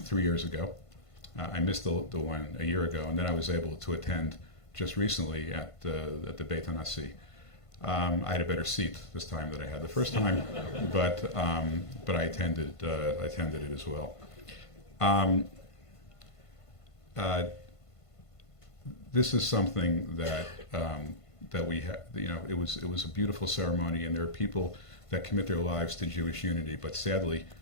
3 years ago. I missed the one a year ago, and then I was able to attend just recently at the Beit HaNasi. I had a better seat this time than I had the first time, but I attended it as well. This is something that we have. You know, it was a beautiful ceremony, and there are people that commit their lives to Jewish unity, but sadly,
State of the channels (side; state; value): right; late; 1.5 ms